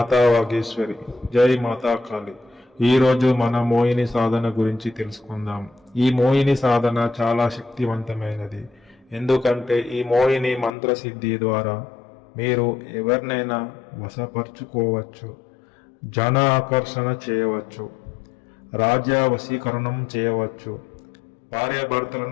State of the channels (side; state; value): right; drops out; at 10.7 s